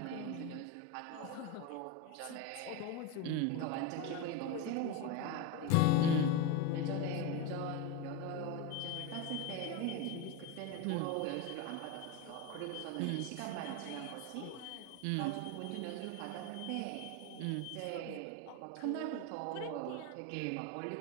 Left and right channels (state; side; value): different; both; correlation 0.05